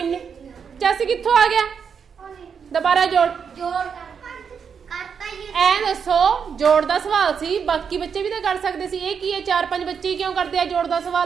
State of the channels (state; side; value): quieter; left; 6.7 dB